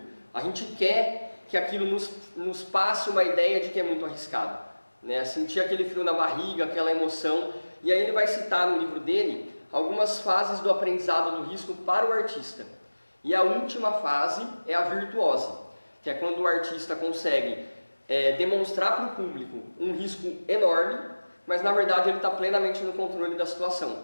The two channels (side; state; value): both; inverted; correlation -1.00